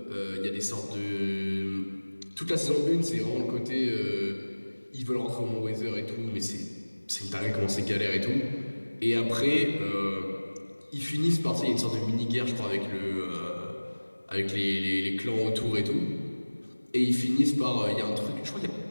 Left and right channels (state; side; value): inverted; both; correlation -1.00